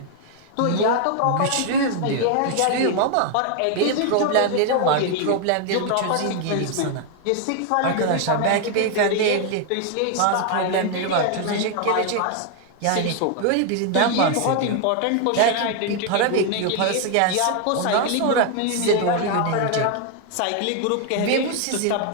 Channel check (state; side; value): different; both; correlation 0.00